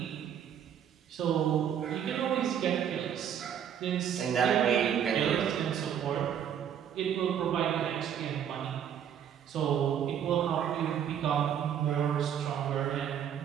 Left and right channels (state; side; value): quieter; left; 9.0 dB